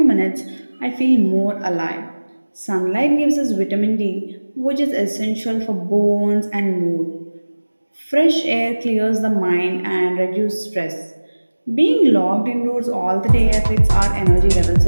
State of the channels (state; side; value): inverted; both; correlation -1.00